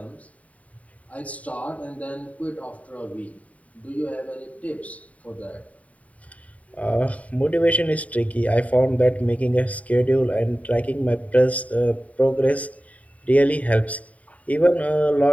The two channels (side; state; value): right; late; 0.069 ms